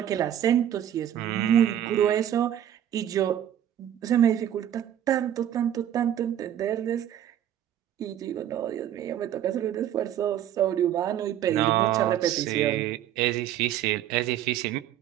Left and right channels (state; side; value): quieter; left; 10.8 dB